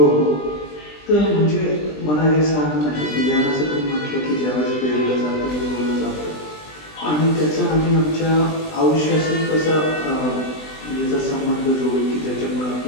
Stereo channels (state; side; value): late; right; 20 ms